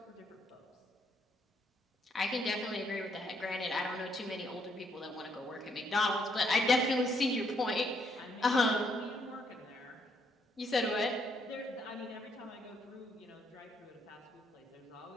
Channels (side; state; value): both; normal; correlation 0.72